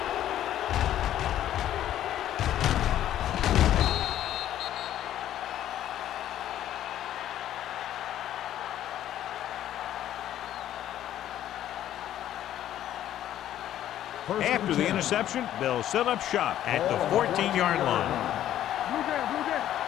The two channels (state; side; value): quieter; right; 11.9 dB